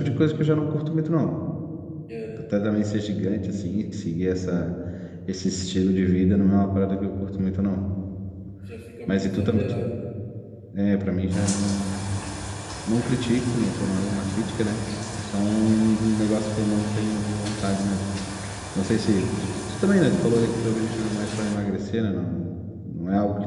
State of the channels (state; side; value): identical; both; correlation 1.00